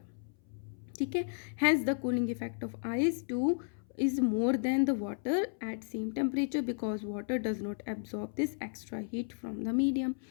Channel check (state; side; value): silent; right; 55 dB below the other